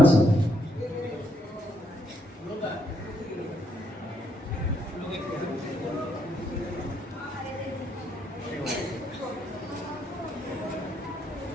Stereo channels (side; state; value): both; normal; correlation 0.74